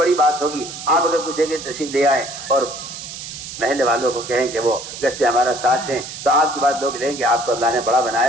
بڑی بات ہوگی. آپ اگر پوچھیں کہ تشریف لے آئے اور محلے والوں کو کہیں کہ وہ گشتے ہمارا ساتھ دیں تو آپ کی بات لوگ لیں گے. آپ کو اللہ نے بڑا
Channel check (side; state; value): right; noise; hiss, 10 dB below the sound